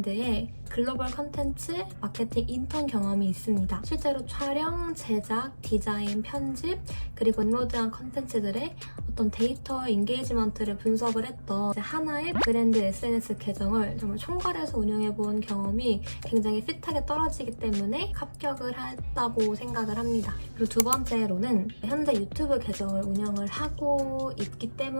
글로벌 컨텐츠 마케팅 인턴 경험이 있습니다. 실제로 촬영, 제작, 디자인, 편집, 그리고 업로드한 컨텐츠들의 어떤 데이터 인게이지먼트를 분석을 했던 하나의 브랜드 SNS 계정을 정말 총괄해서 운영해본 경험이 굉장히 핏하게 떨어지기 때문에 합격을 했다고 생각을 합니다. 그리고 두 번째로는 현재 유튜브 계정을 운영을 하고 있기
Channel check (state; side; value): inverted; both; correlation -1.00